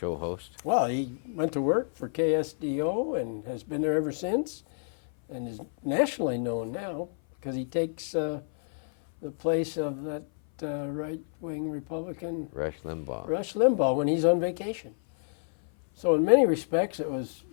host. Well, he went to work for KSDO and has been there ever since, and is nationally known now because he takes the place of that right-wing Republican Rush Limbaugh. Rush Limbaugh when he's on vacation. So in many respects, it was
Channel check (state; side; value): silent; right; 56 dB below the other